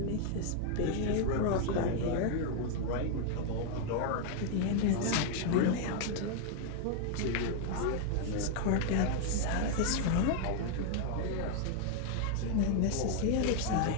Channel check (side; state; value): both; different; correlation 0.00